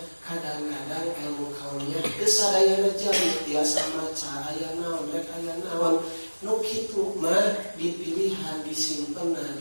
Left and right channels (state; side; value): inverted; both; correlation -1.00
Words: kadang-kadang ilmu kauniyah teu sadayana jami tiasa maca aya naon rek aya naon nu kitu mah dipilihan disimpenna